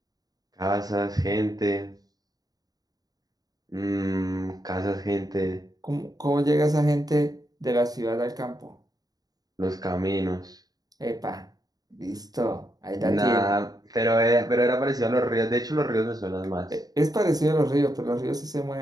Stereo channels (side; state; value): left; late; 0.18 ms